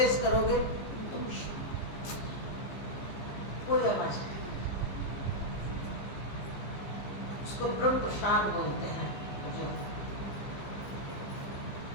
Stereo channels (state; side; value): late; right; 15 ms